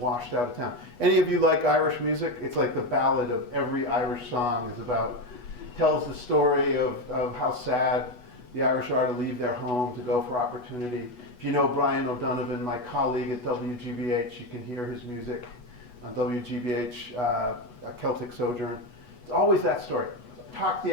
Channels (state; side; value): late; right; 8.2 ms